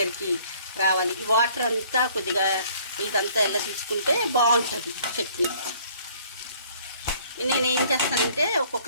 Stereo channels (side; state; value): both; inverted; correlation -0.58